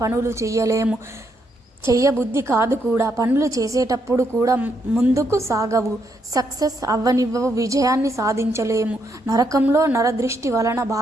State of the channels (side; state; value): both; normal; correlation 0.77